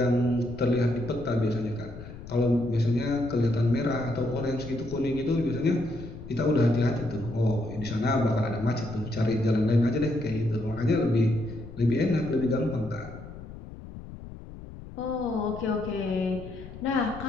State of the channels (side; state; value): left; noise; rumble, 14 dB below the sound